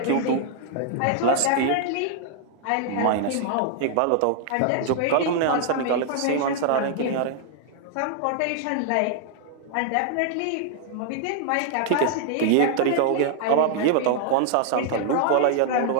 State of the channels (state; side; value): different; both; correlation 0.00